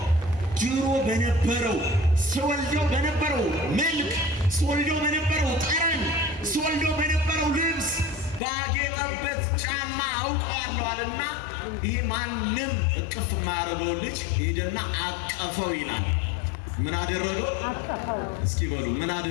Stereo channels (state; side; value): drops out; right; at 8.4 s